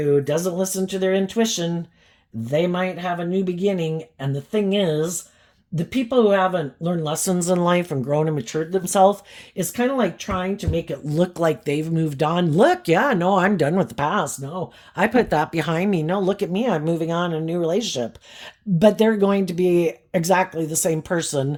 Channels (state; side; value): identical; both; correlation 1.00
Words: doesn't listen to their intuition, they might have a new beginning. And the thing is, the people who haven't learned lessons in life and grown and matured themselves is kind of like trying to make it look like they've moved on. Look, yeah, no, I'm done with the past. No, I put that behind me. No, look at me. I'm moving on in a new relationship. But they're going to be exactly the same